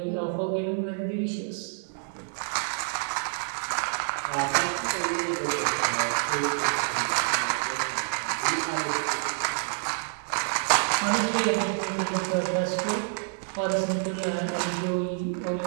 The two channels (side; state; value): left; silent; digital silence